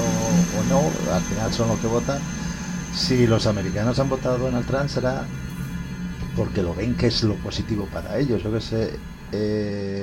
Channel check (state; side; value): identical; both; correlation 1.00